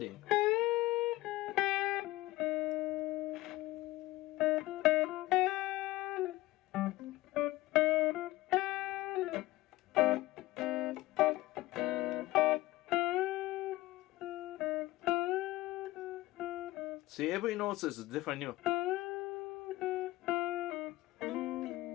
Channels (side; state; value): right; quieter; 17.9 dB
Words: See, every note is a different note.